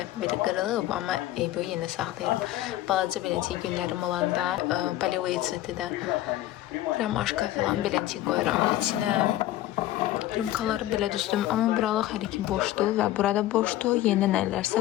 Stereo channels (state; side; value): quieter; right; 14.5 dB